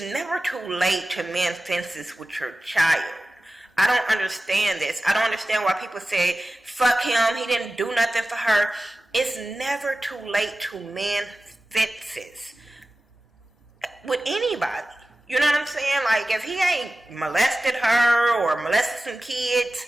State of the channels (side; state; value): both; normal; correlation 0.95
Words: never too late to mend fences with your child. I don't understand this. I don't understand why people say, fuck him. He didn't do nothing for her. It's never too late to mend fences with anybody. You know what I'm saying? Like, if he ain't molested her or molested some kids,